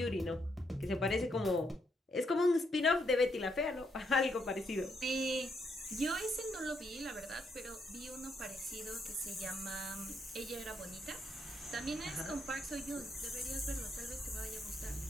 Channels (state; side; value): normal; both; correlation 0.77